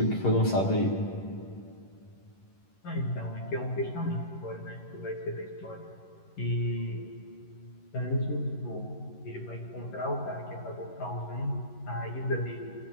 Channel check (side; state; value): right; late; 11 ms